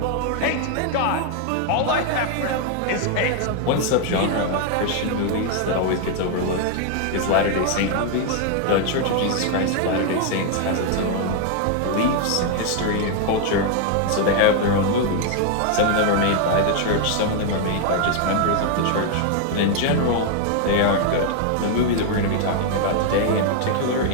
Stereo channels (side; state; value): both; different; correlation 0.00